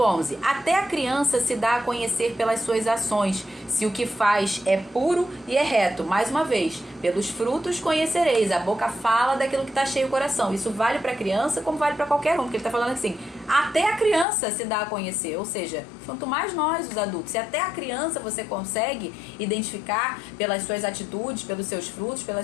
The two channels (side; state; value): right; drops out; at 14.2 s